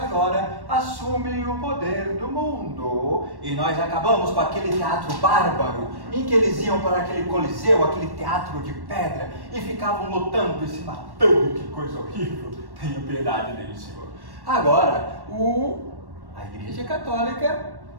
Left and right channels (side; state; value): left; late; 1.1 ms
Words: agora assume o poder do mundo e nós acabamos com aquele teatro bárbaro em que eles iam para aquele coliseu, aquele teatro de pedra e ficavam lutando e se matando. Que coisa horrível! Tenha piedade deles, Senhor. Agora, a Igreja Católica